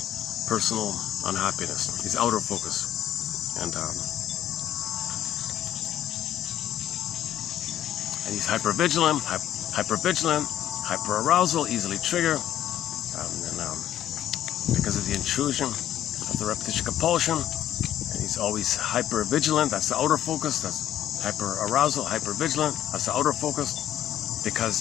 personal unhappiness. He's outer focused. And he's hypervigilant, hyperarousal, easily triggered, because of the intrusion of the repetition compulsion. And he's always hypervigilant, that's the outer focus. That's hyperarousal, hypervigilant, that's the outer focus.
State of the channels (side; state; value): right; quieter; 11.6 dB